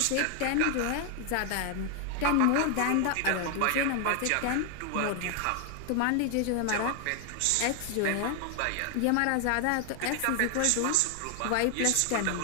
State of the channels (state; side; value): different; both; correlation 0.00